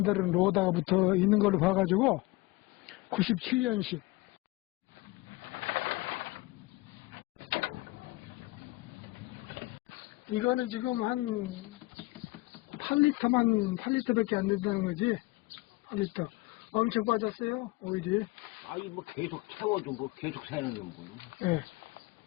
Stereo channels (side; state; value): right; quieter; 21.9 dB